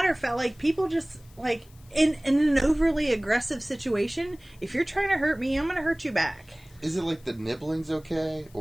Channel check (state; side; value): noise; left; hiss, 28 dB below the sound